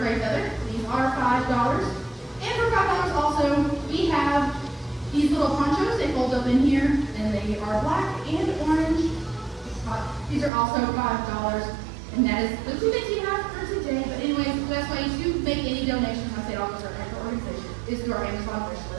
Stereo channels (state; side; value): drops out; left; at 10.5 s